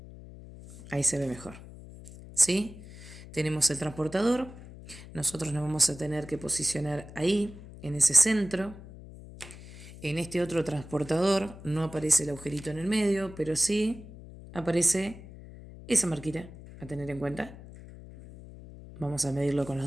Ahí se ve mejor. ¿Sí? Tenemos el transportador. Nosotros nos vamos a tener que posicionar ahí, en ese centro. En este otro transportador no aparece el agujerito en el medio, pero sí aparece esa marquita a tener en cuenta. Vamos a medirlo con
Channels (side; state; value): left; noise; hum, 16 dB below the sound